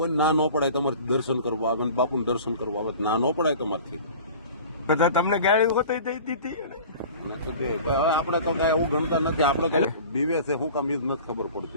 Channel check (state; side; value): inverted; both; correlation -0.42